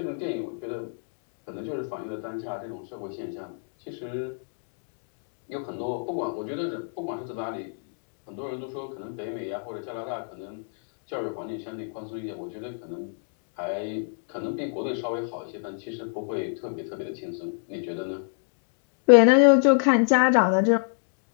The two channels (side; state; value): right; silent; digital silence